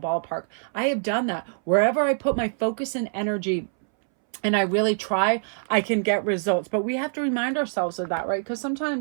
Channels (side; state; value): left; silent; 62 dB below the other